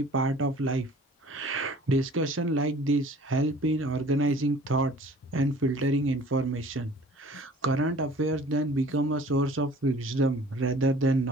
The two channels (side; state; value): both; normal; correlation 0.49